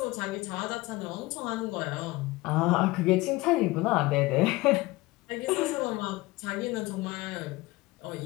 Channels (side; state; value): right; quieter; 20.8 dB